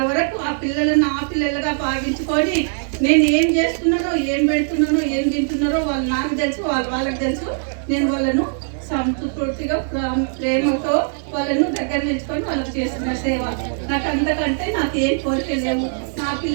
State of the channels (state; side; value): silent; left; digital silence